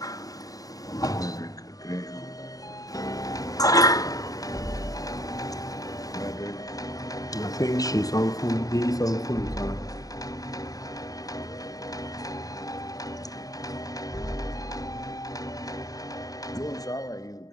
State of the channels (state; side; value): late; right; 0.18 ms